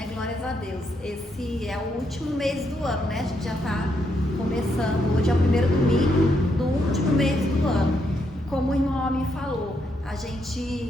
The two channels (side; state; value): both; normal; correlation 0.78